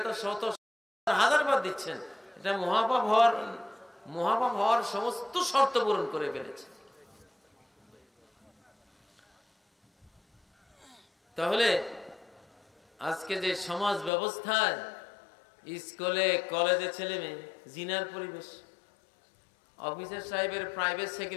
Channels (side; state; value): right; drops out; at 14.1 s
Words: তো শত হাজার বার দিচ্ছেন, এটা মহাপাপ হওয়ার সমস্ত শর্ত পূরণ করে ফেলেছে। তাহলে আজকে যে সমাজ ব্যবস্থায় স্কুলে কলেজে ছেলে মেয়ে জিনার পরিবেশ, অফিসার সাহেবের প্রাইভেট